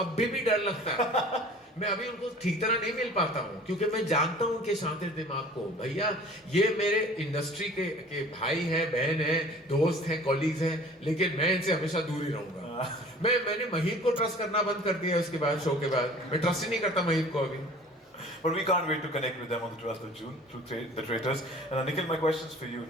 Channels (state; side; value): normal; both; correlation 0.46